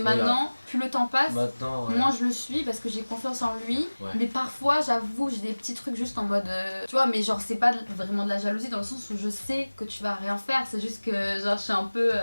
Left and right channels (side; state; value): both; inverted; correlation -1.00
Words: plus le temps passe, Maintenant, ouais. moins je le suis parce que j'ai confiance en lui. Ouais. Mais parfois, j'avoue, j'ai des petits trucs juste en mode. Tu vois, mais genre, c'est pas vraiment de la jalousie dans le sens où je sais que tu vas rien faire. C'est juste que, genre, je suis un peu.